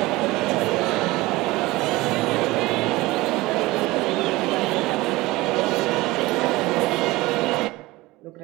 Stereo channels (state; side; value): quieter; left; 20.1 dB